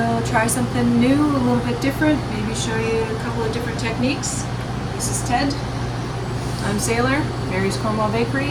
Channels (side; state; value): both; identical; correlation 1.00